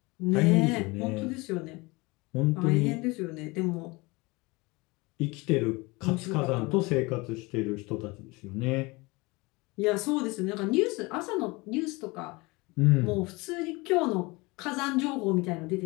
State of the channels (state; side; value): quieter; right; 24.6 dB